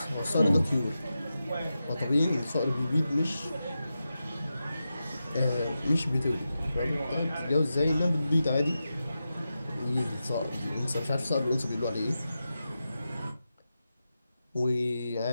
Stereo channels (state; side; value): inverted; both; correlation -0.91